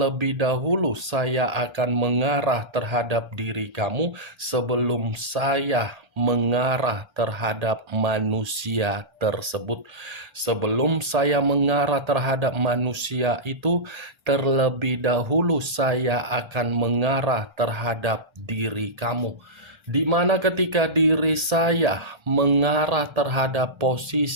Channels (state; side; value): late; left; 1.3 ms